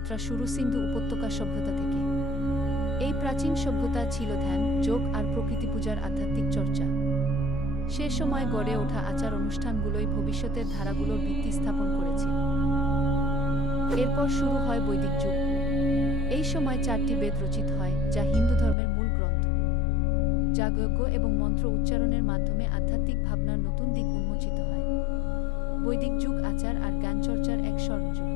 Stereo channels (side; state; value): right; drops out; at 18.8 s